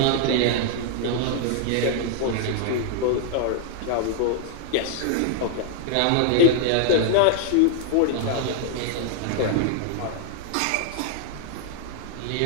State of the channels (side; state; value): both; different; correlation 0.00